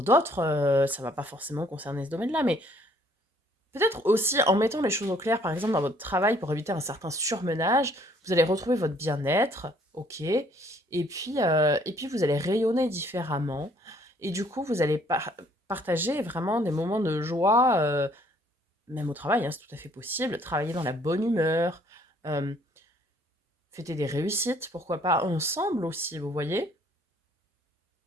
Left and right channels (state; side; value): normal; both; correlation 0.62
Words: d'autres, ça va pas forcément concerner ce domaine-là, mais peut-être aussi en mettant les choses au clair, par exemple dans votre travail, pour éviter un certain surmenage, vous allez retrouver votre bien-être, ok, et puis vous allez rayonner différemment, et du coup vous allez partager vraiment des moments de joie, même au travail, hein, c'est tout à fait possible, travailler dans la bonne humeur, euh, fêter des réussites, pourquoi pas ensemble aussi, vous voyez.